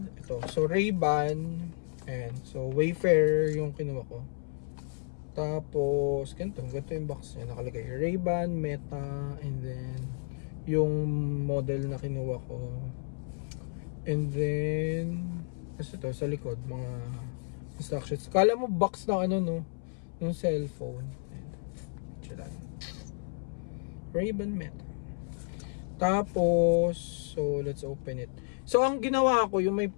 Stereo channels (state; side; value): silent; right; 57 dB below the other